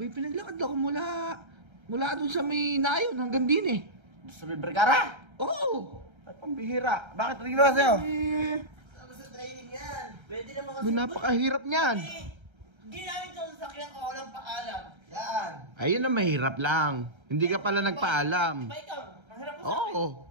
pinaglakad ako mula dun sa may nayon hanggang din eh. Sa Vergara? Oo! Ay, pambihira. Bakit? Ano ginawa sa'yo? Eh, Ano sa training yan? Pwede naman kasi. May napakahirap niyan. Hindi namin ito sa sakyan ko, walang paalam. Yan. Ayun na mahirap lang. Hindi ka pala nagpaalam. Diba ikaw? Mahirap ko sa akin. Oo.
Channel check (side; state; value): left; late; 1.3 ms